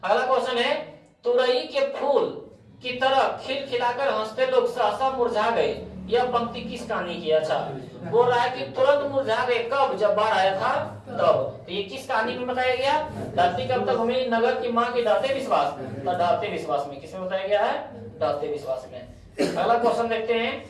अगला क्वेश्चन है, तुरई के फूल की तरह खिलखिलाकर हंसते लोग सहसा मुरझा गए, यह पंक्ति किस कहानी की? अच्छा, बोल रहा है कि तुरंत मुरझा गए, कब? जब बाढ़ आया था तब। तो ये किस कहानी में बताया गया? धरती कब तक घूमेगी, नगर की मां के ढाते विश्वास। तो ढाते विश्वास में। किसमें बताया गया है? ढाते विश्वास में। अगला क्वेश्चन देखते हैं,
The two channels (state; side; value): identical; both; correlation 1.00